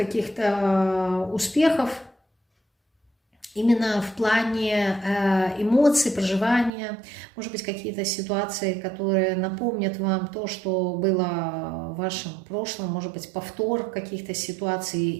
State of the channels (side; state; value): left; drops out; at 6.7 s